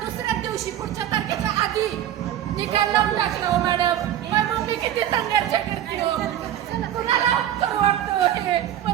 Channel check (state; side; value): quieter; left; 11.5 dB